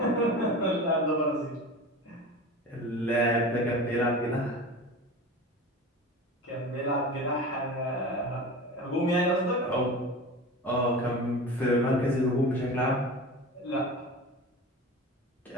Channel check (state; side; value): normal; both; correlation 0.32